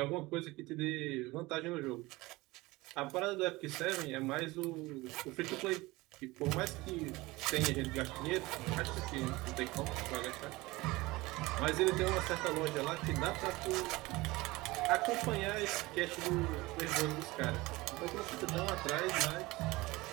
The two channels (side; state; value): left; quieter; 21.0 dB